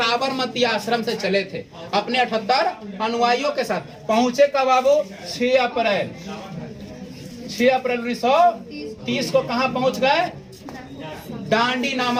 आश्रम से चले थे अपने 78 अनुयायियों के साथ। पहुंचे कब बाबू? 6 अप्रैल 1930 को कहां पहुंच गए? डांडी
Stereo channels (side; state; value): both; identical; correlation 1.00